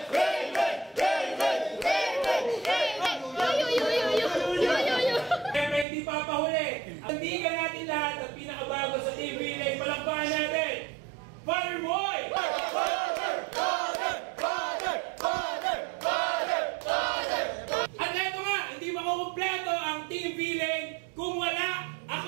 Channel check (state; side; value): drops out; left; at 5.9 s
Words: Siyempre hindi papahuli. Tandigan natin lahat at pinakabago sa TV Leg. Palakpakan natin! Father Boy! At eto nga, hindi makukumpleto ang Team V-Leg kung wala